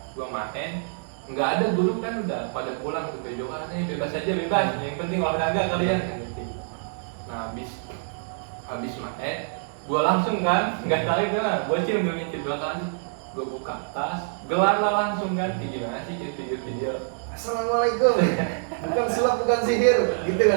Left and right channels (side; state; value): left; silent; digital silence